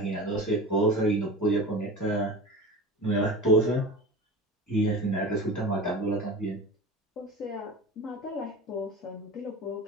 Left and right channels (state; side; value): normal; both; correlation 0.32